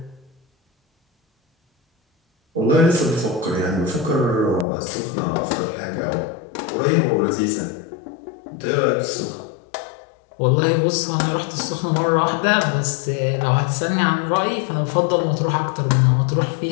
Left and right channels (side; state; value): right; drops out; at 4.7 s